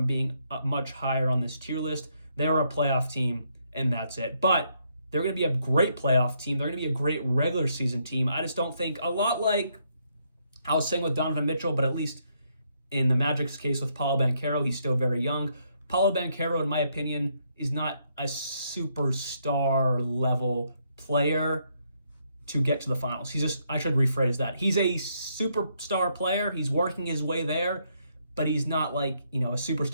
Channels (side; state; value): both; inverted; correlation -0.74